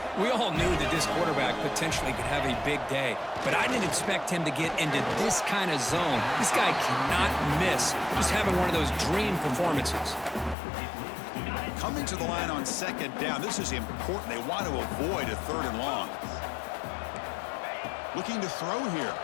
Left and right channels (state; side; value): drops out; right; at 10.6 s